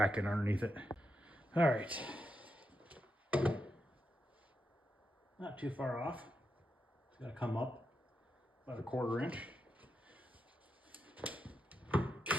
underneath it. All right. Not too far off. It's gotta come up about a 1/4 inch.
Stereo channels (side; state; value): both; normal; correlation 0.85